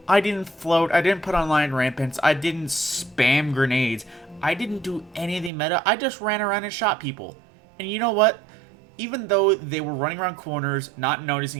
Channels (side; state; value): left; drops out; at 5.5 s